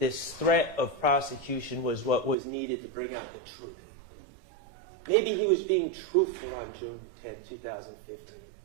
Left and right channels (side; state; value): left; drops out; at 2.4 s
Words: threat of prosecution was what was needed to bring out the truth. Maybe he was being truthful on June 10, 2015.